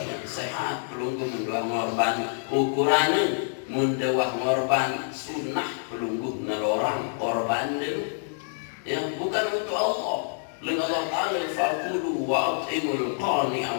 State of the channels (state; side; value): silent; right; 60 dB below the other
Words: Sehat pelunggu mendoa ngorban ukurannya mendoa ngorban sunnah pelunggu nelorang korban ya bukan untuk Allah. Lalu Allah Taala fakulu wa atimul qani